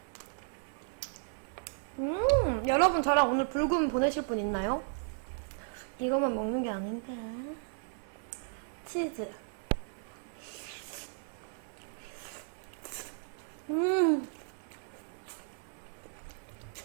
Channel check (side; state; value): left; silent; 55 dB below the other